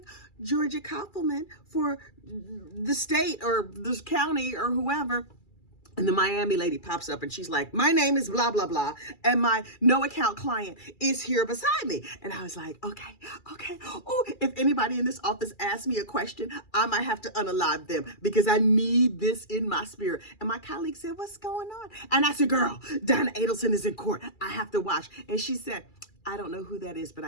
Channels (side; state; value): right; late; 2.3 ms